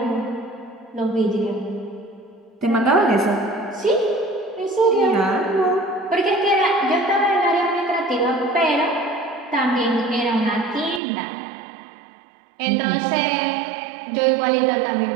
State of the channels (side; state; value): left; drops out; at 11.0 s